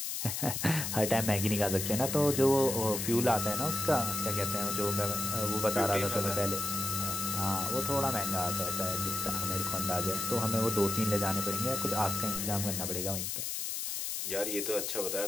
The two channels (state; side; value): noise; left; hiss, 3 dB below the sound